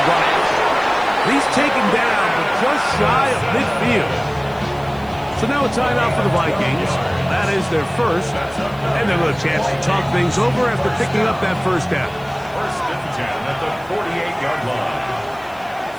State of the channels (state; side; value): noise; left; hiss, 27 dB below the sound